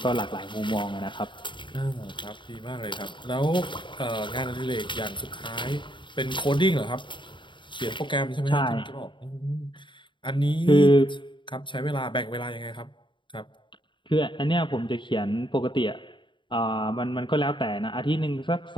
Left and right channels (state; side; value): late; right; 0.23 ms